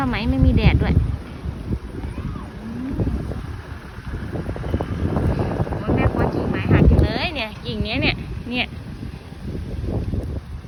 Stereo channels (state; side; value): identical; both; correlation 1.00